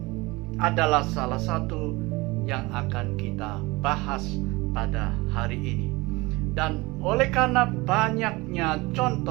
adalah salah satu yang akan kita bahas pada hari ini. Dan oleh karena banyaknya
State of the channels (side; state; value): left; quieter; 22.8 dB